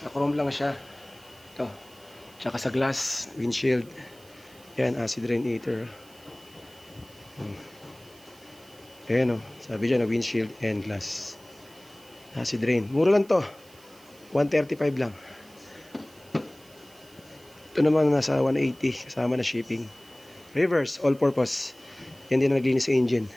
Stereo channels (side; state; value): right; noise; hiss, 25 dB below the sound